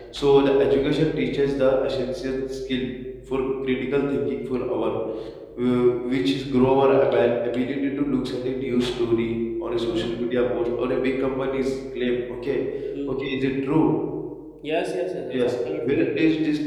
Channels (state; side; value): identical; both; correlation 1.00